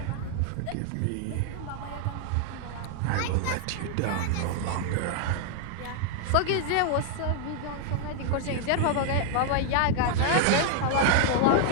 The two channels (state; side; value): different; both; correlation 0.00